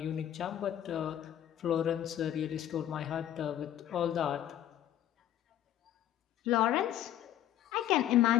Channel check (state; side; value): quieter; right; 11.7 dB